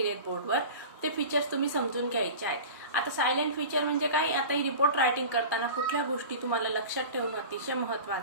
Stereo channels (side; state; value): both; inverted; correlation -0.34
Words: बोर्डवर. ते फीचर्स तुम्ही समजून घ्यायचे आहेत. आता सायलेंट फीचर म्हणजे काय, आता ही रिपोर्ट रायटिंग करताना कुठल्या गोष्टी तुम्हाला लक्षात ठेवणं अतिशय